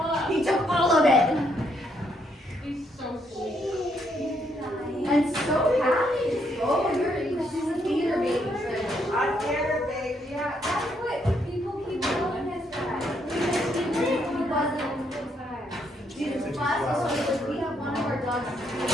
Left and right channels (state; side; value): normal; both; correlation 0.74